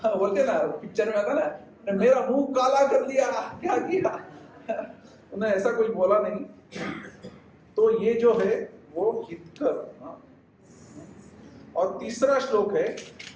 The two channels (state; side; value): identical; both; correlation 1.00